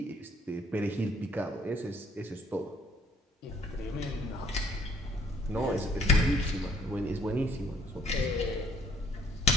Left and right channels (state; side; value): normal; both; correlation 0.62